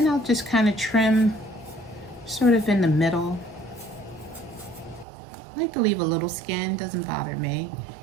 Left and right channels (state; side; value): drops out; left; at 5.1 s